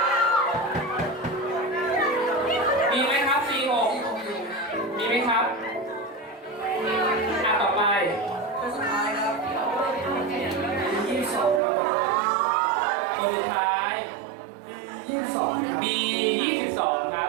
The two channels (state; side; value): drops out; left; at 11.6 s